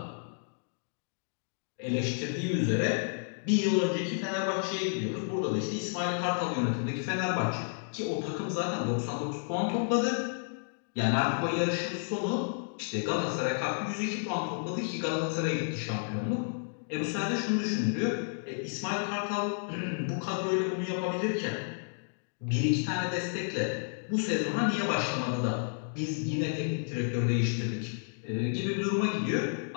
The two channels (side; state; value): right; silent; digital silence